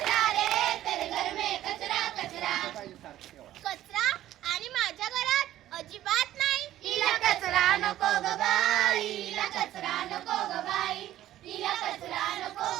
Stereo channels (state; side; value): quieter; left; 13.4 dB